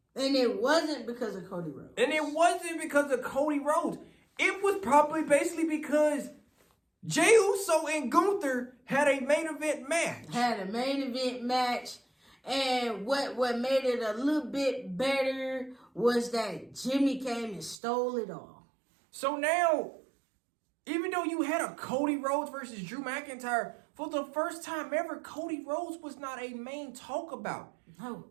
And it wasn't because of Cody Rhodes. And it wasn't because of Cody Rhodes. It was probably basically because Jeyuso and Gunther had a main event match. And what made it a little bit better was that Jimmy came and stole it all. So now, even though you had a Cody Rhodes versus Drew McIntyre, for the first time ever, Cody Rhodes was not a main talk about. No.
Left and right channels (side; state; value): left; drops out; at 17.8 s